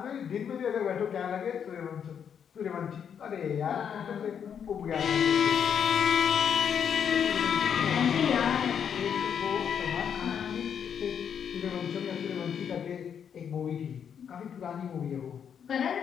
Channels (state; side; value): quieter; right; 7.9 dB